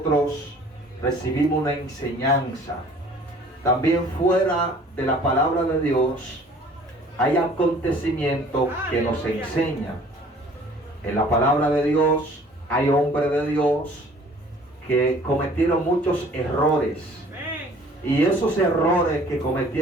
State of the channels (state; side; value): normal; both; correlation 0.52